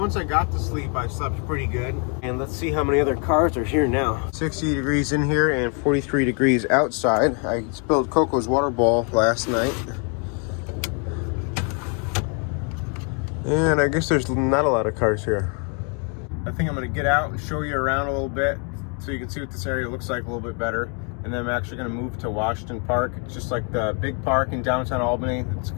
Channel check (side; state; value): right; quieter; 38.6 dB